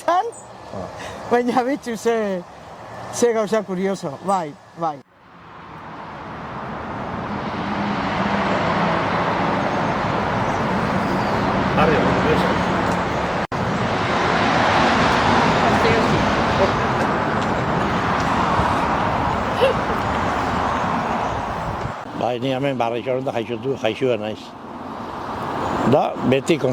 baina betxu ze gauza kurioso, bai. Bai, ni hemen barrixoren da jaixua naiz. Da, beti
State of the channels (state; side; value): identical; both; correlation 1.00